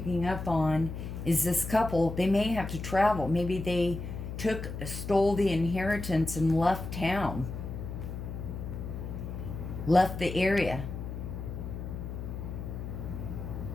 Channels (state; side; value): noise; left; hum, 7 dB below the sound